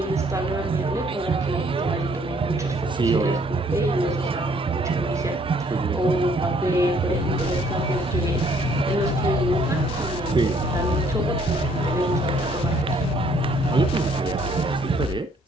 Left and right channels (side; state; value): both; normal; correlation 0.63